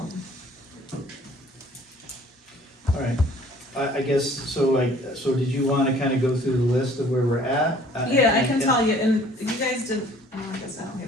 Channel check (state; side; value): normal; both; correlation 0.54